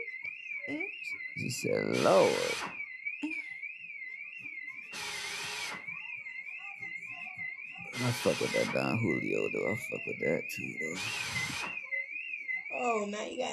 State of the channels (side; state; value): both; identical; correlation 1.00